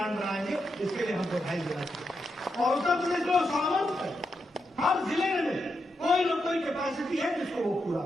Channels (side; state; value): both; normal; correlation 0.85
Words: बनाएंगे। इसके लिए हम बधाई देना चाहिए। और उत्तर प्रदेश में सामर्थ है, हर जिले में कोई न कोई कैपेसिटी है जिसको वो पूरा